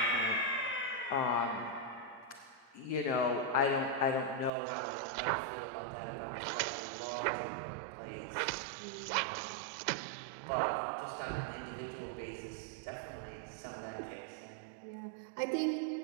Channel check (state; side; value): drops out; left; at 4.5 s